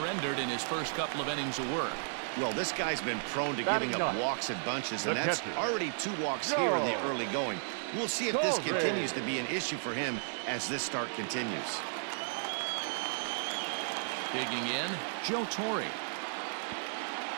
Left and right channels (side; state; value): left; silent; digital silence